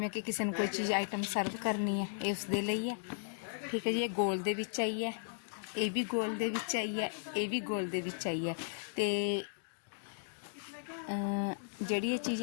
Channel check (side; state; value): right; silent; digital silence